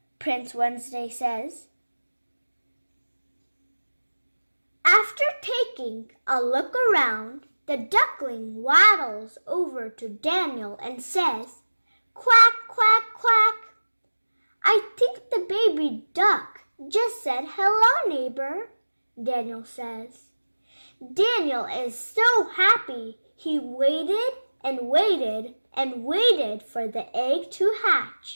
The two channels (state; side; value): inverted; both; correlation -1.00